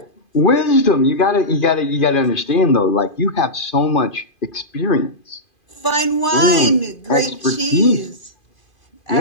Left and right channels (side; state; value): right; late; 2.5 ms